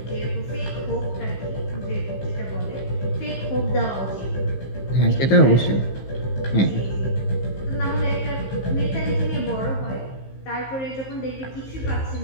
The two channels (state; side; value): late; right; 15 ms